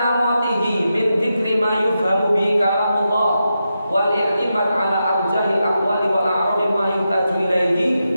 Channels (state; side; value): inverted; both; correlation -0.88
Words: min dzikri ma yufhamu bi kalamullah wal i'timad ala arjahil aqwali wal a'radi ma yuhtaju